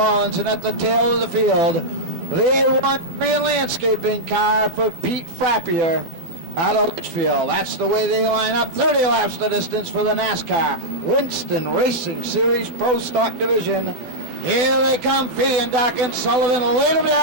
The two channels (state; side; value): late; left; 12 ms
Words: and at the tail of the field, the A1 Korean landscaping car for Pete Frappier out of Litchfield. That's the way they line up. 30 laps the distance for the NASCAR Winston Racing Series Pro Stock Division. Here they come, Fee and Doc and Sullivan. Laid them